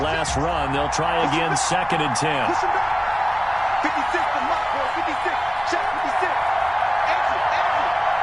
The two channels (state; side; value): identical; both; correlation 1.00